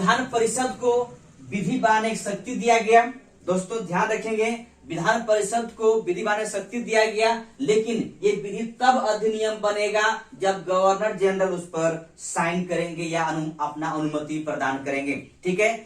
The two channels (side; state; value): both; identical; correlation 1.00